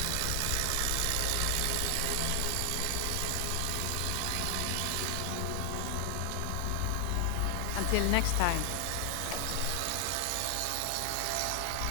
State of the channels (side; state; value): both; different; correlation 0.00